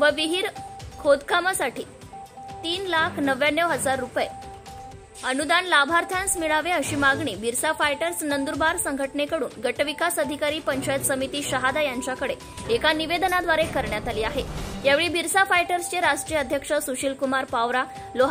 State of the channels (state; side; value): identical; both; correlation 1.00